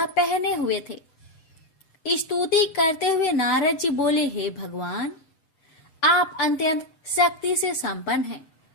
पहने हुए थे। स्तुति करते हुए नारद जी बोले, हे भगवान, आप अत्यंत शक्ति से संपन्न हैं,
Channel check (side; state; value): right; late; 7.9 ms